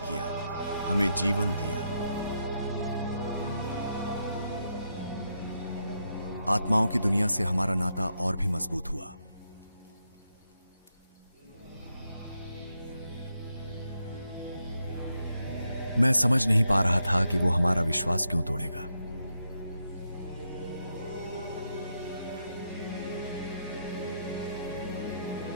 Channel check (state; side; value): inverted; both; correlation -0.82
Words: हमें जीवन दिया। आत्माओं की दुनिया से हमारा नाता और भी मजबूत हुआ। मैं समझ नहीं पा रहा था कि वो हमारा विश्वास क्यों तोड़ेगा।